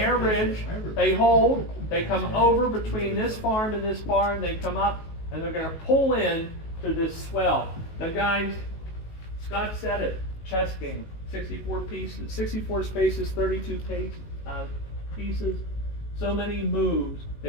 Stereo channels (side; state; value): right; late; 19 ms